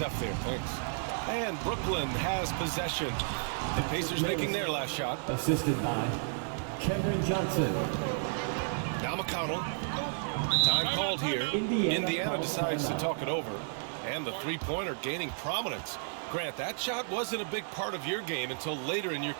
there. Thanks. And Brooklyn has possession. The Pacers making their last shot. Assisted by Cameron Johnson. Now McConnell. Time called here. Indiana decides to talk it over. And the three-pointer gaining prominence. Grant, that shot wasn't a big part of your game until later in your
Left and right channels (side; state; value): left; silent; digital silence